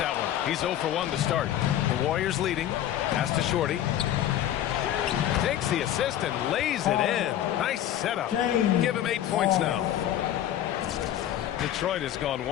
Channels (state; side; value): quieter; right; 11.7 dB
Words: one. He's 0 for 1 to start. The Warriors leading. Pass to Shorty. Takes the assist and lays it in. Nice setup. Give him 8 points now. Detroit has gone